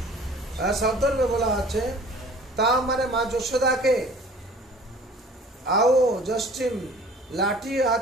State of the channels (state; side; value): normal; both; correlation 0.48